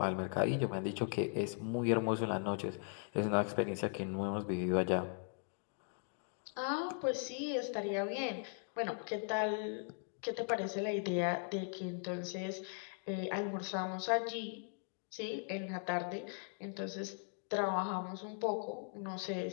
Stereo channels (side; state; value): right; silent; 52 dB below the other